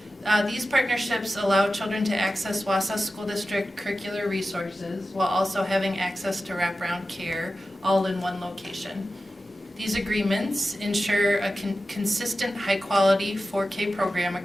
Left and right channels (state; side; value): normal; both; correlation 0.94